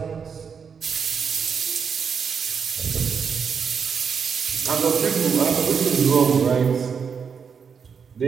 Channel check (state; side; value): quieter; left; 6.4 dB